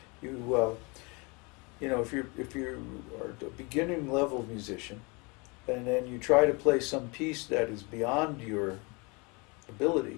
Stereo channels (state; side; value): quieter; right; 29.1 dB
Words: You know, if you are a beginning level musician, and then you try to play some piece that is beyond your